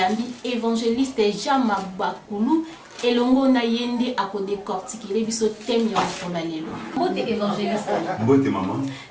évangéliste Jean Mabakulu et longo na yende a ko décortiquer biso thème ya kola lelo. Mbote évangéliste. Mbote maman.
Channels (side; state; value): both; identical; correlation 1.00